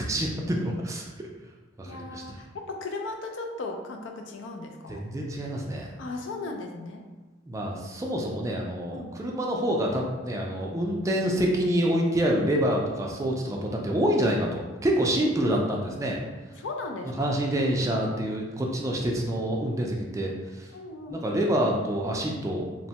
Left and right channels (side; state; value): both; normal; correlation 0.57